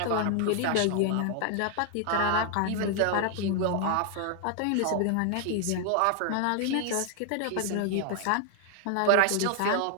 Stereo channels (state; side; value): different; both; correlation 0.00